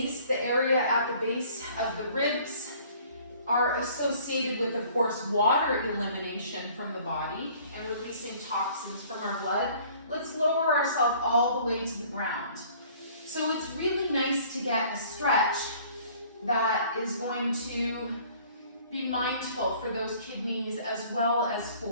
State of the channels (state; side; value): inverted; both; correlation -0.54